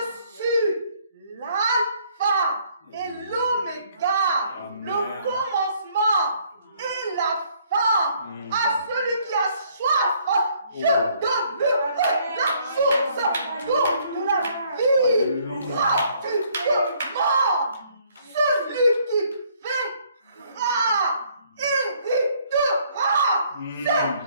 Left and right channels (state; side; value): inverted; both; correlation -0.64